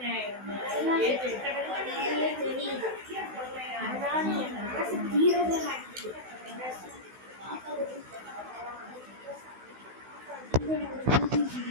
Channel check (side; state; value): left; late; 16 ms